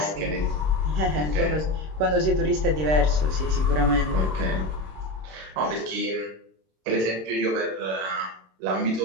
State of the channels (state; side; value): late; left; 26 ms